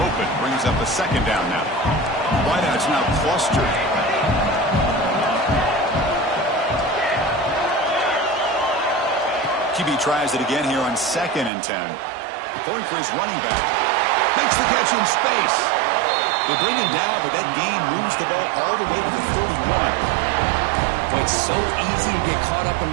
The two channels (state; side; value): drops out; left; at 11.5 s